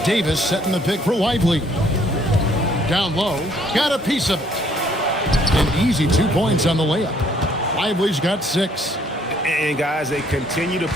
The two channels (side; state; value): both; normal; correlation 0.63